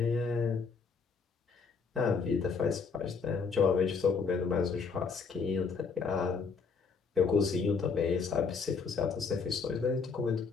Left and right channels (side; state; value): right; quieter; 5.2 dB